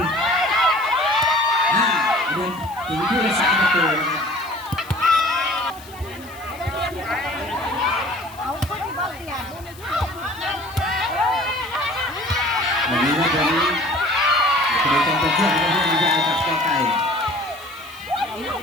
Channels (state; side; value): noise; left; hiss, 22 dB below the sound